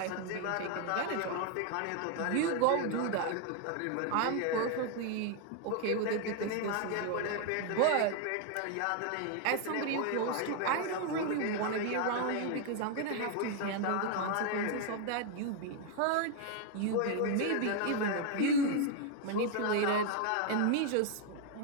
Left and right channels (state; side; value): different; both; correlation 0.01